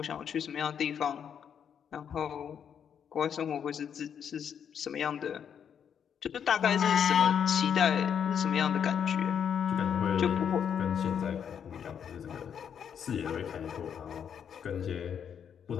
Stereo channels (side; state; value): right; quieter; 8.0 dB